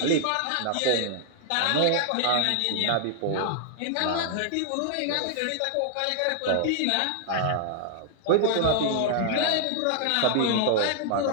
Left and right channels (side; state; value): both; different; correlation -0.01